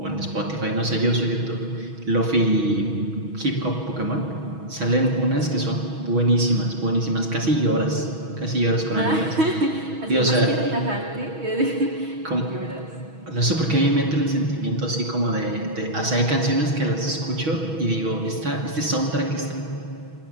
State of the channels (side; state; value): left; late; 6.2 ms